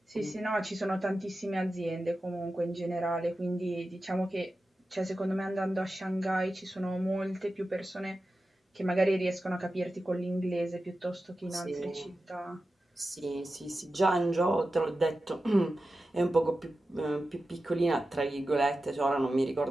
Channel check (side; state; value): both; normal; correlation 0.93